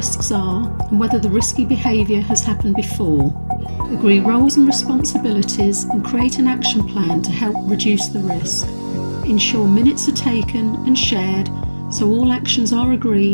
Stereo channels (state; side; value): inverted; both; correlation -1.00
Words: are and whether the risky behaviour has happened before. Agree roles and responsibilities and create an action plan to help reduce the risk. Ensure minutes are taken and shared so all actions are